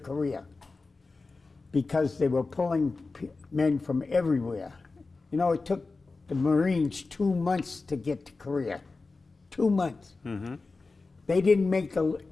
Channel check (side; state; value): right; quieter; 3.8 dB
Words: because they were pulling men from everywhere. It took the Marines 2 months to get to Korea. 2 months. Mm-hmm. They didn't make an